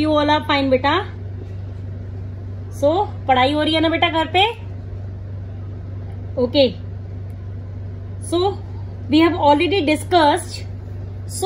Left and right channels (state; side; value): identical; both; correlation 1.00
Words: all are fine बेटा. So पढ़ाई हो रही है ना बेटा घर पे? Okay. So we have already discussed